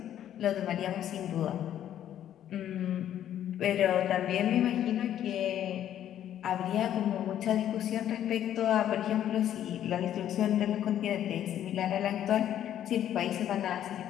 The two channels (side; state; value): right; quieter; 11.0 dB